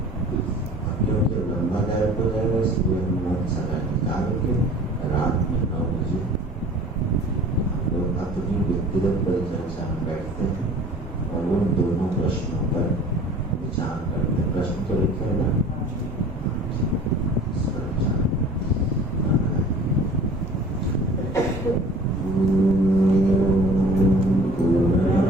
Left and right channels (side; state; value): both; normal; correlation 0.46